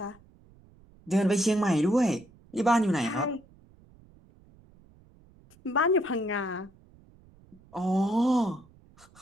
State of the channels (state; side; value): noise; right; rumble, 27 dB below the sound